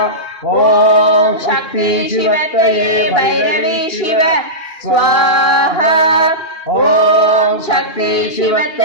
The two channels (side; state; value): right; late; 2.4 ms